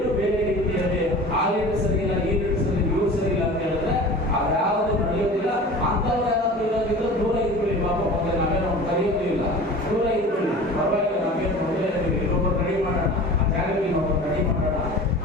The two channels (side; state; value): both; normal; correlation 0.39